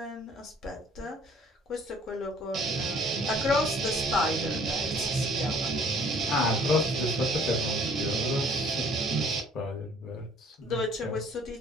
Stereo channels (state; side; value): normal; both; correlation 0.56